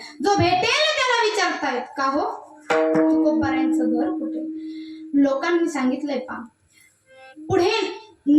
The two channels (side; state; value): both; identical; correlation 1.00